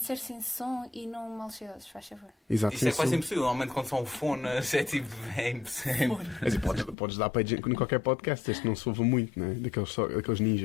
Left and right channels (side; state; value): right; drops out; at 7.0 s